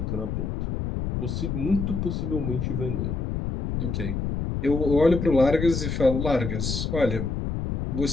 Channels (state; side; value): noise; left; rumble, 2 dB below the sound